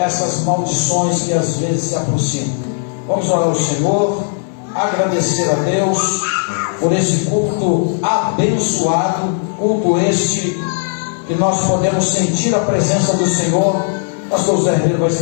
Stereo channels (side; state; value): right; silent; 58 dB below the other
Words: maldições que às vezes se aproximam. Vamos orar ao Senhor, agradecer a Deus por esse culto abençoado, culto este que nós podemos sentir a presença do Senhor. O pastor José Ribeiro vai